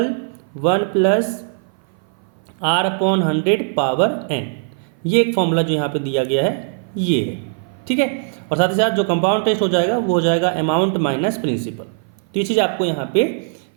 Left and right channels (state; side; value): silent; left; 58 dB below the other